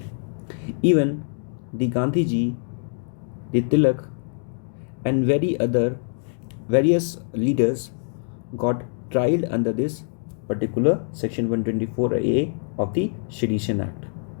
Even the Gandhiji, the Tilak, and various leaders got tried under this particular section 124A of the Sedition Act.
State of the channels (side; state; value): right; silent; 62 dB below the other